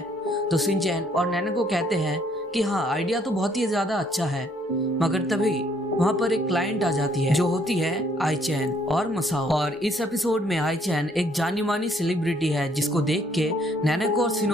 तो शिनचैन और नैनेको कहते हैं कि हाँ, आइडिया तो बहुत ही ज्यादा अच्छा है। मगर तभी वहाँ पर एक क्लाइंट आ जाती है जो होती है आईचैन और मसाओ। और इस एपिसोड में आईचैन एक जानी मानी सेलिब्रिटी है जिसको देख के नैनेको और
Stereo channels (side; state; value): both; normal; correlation 0.65